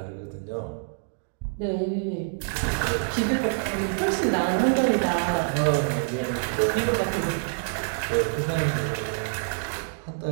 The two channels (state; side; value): silent; left; 61 dB below the other